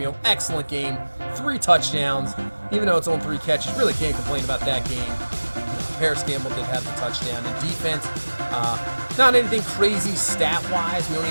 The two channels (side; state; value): both; inverted; correlation -1.00